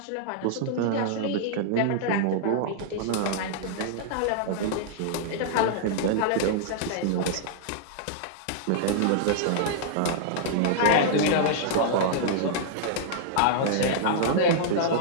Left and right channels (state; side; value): different; both; correlation -0.01